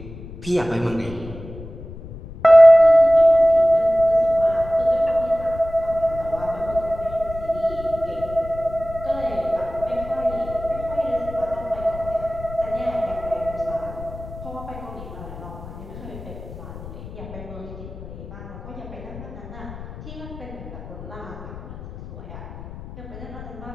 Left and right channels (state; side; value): noise; left; rumble, 13 dB below the sound